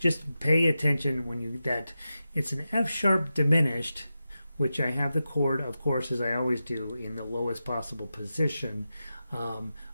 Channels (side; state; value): both; inverted; correlation -0.91